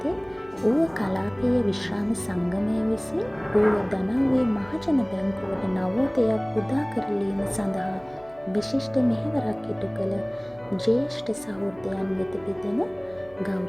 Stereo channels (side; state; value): right; noise; hum, 26 dB below the sound